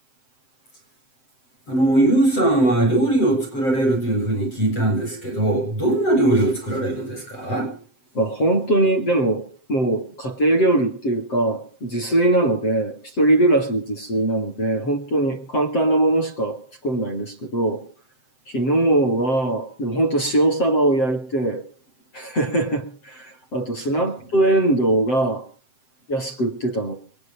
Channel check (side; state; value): right; late; 7.7 ms